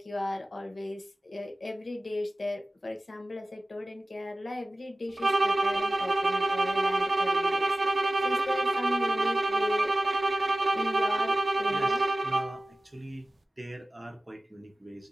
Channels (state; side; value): normal; both; correlation 0.97